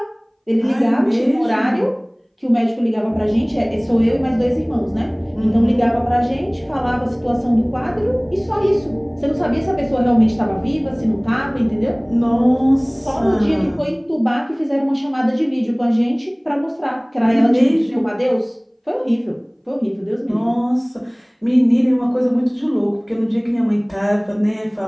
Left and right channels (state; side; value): identical; both; correlation 1.00